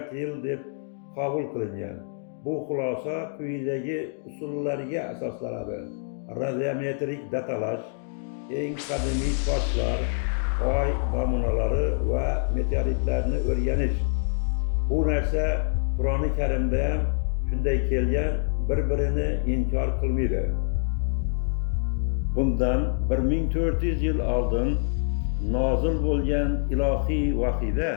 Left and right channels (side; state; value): right; silent; digital silence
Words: yil deb qabul qilingan. Bu xulosa quyidagi usullarga asoslanadi: radiometrik datalash, eng qadimiy toshlar, oy namunalari va meteoritlarni o'rganish. Bu narsa Qur'oni Karimda ham shunday kelgan, bir-birini inkor qilmaydi. Bundan 1400 yil oldin nozil bo'lgan ilohiy vahiyda